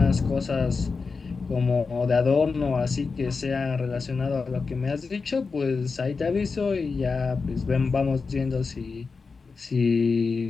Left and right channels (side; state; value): right; quieter; 4.6 dB